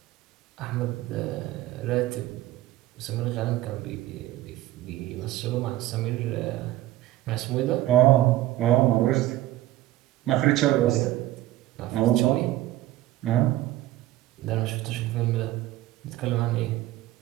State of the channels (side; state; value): left; quieter; 15.3 dB